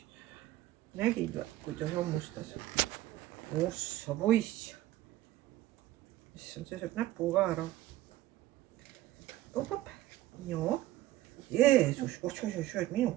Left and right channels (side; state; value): left; quieter; 15.2 dB